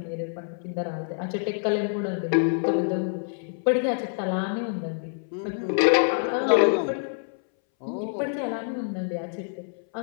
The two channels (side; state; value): right; silent; 61 dB below the other